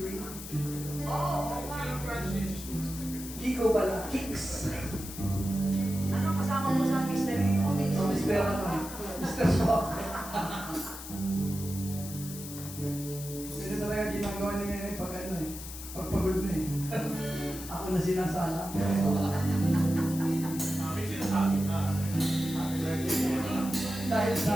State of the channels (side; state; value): left; noise; hiss, 11 dB below the sound